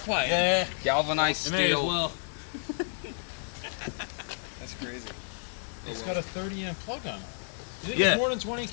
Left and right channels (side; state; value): right; silent; digital silence